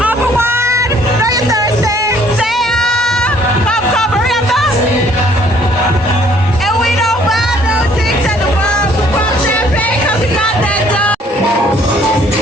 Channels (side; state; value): both; normal; correlation 0.61